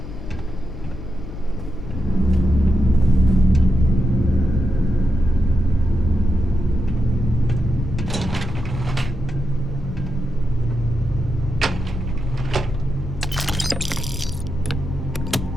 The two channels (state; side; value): noise; left; hum, 11 dB below the sound